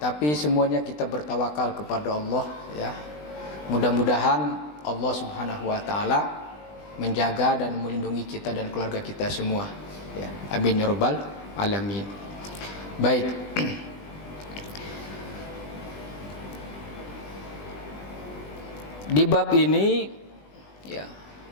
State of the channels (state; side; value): late; right; 20 ms